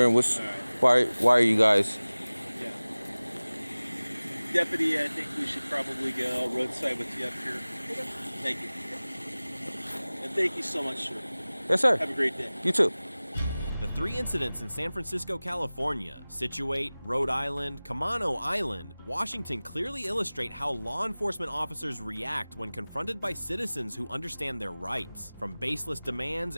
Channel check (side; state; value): both; inverted; correlation -0.99